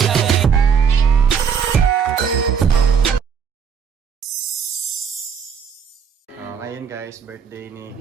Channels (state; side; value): quieter; left; 6.8 dB